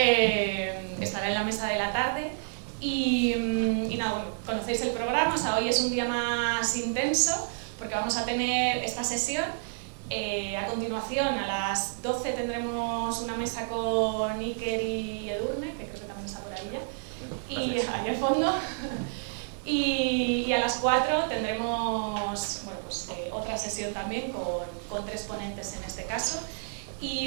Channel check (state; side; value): silent; left; 58 dB below the other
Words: Estará en la mesa de la tarde. Y nada, bueno, conocéis el programa, o sea, hoy es un día más intenso porque vamos a tener esta sesión. A continuación, a las 12 tendremos una mesa con Iker y Edurne, que creo que también está por ahí ya, y ahí al fondo. Y a las 4 tendremos bueno, pues, otra sesión también con 3 ponentes en este caso.